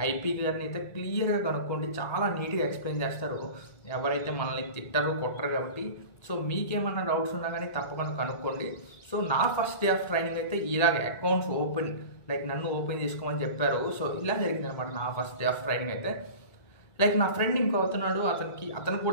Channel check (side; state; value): right; late; 1.8 ms